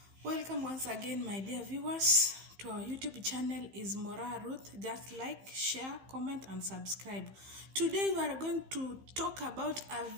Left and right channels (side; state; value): left; late; 15 ms